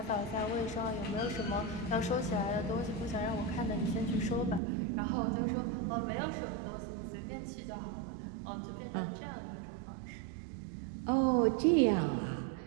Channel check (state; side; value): drops out; left; at 4.6 s